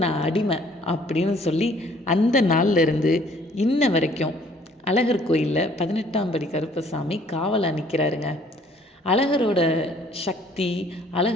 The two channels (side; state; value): both; normal; correlation 0.59